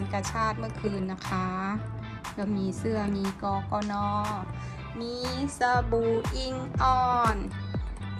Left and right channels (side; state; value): both; identical; correlation 1.00